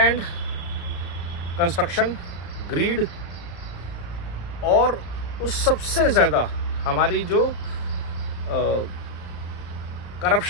कंस्ट्रक्शन, ग्रीड और उस सबसे ज़्यादा हमारी जो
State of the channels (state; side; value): late; right; 34 ms